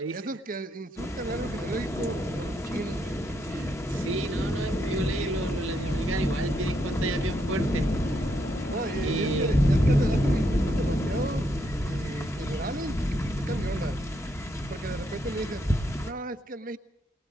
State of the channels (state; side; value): normal; both; correlation 0.77